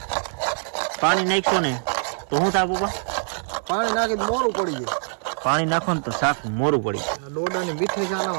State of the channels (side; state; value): left; silent; 63 dB below the other